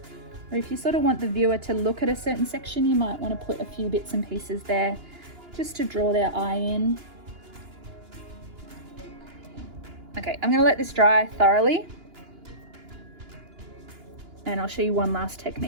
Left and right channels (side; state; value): left; late; 2.9 ms